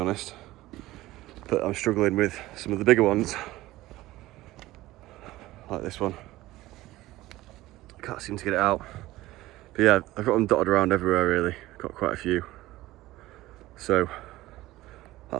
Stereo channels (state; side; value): quieter; left; 17.2 dB